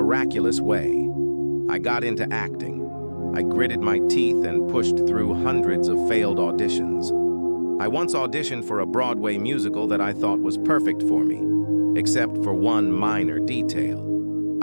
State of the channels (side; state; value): both; inverted; correlation -1.00